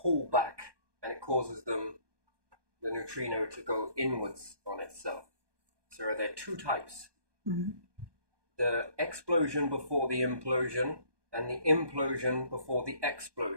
back, and it causes the neutrino to go inwards on itself. So are there two types? The explosion before the implosion, and the implosion before the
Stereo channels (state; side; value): late; left; 1.2 ms